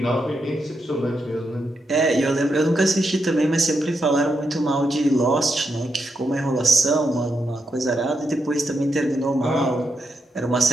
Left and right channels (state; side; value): normal; both; correlation 0.83